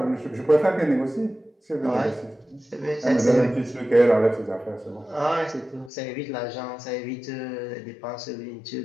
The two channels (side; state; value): right; drops out; at 5.9 s